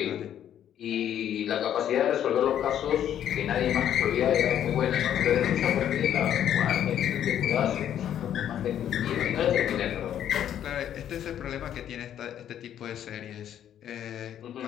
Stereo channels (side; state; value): right; quieter; 10.3 dB